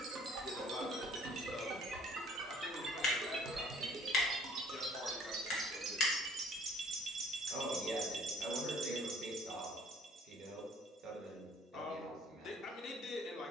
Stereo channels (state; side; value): normal; both; correlation 0.56